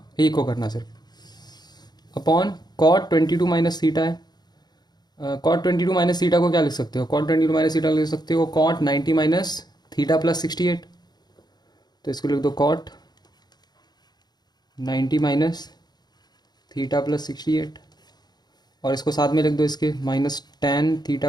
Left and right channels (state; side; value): late; right; 0.20 ms